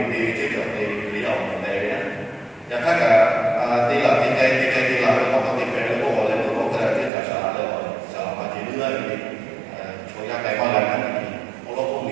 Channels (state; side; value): drops out; left; at 7.1 s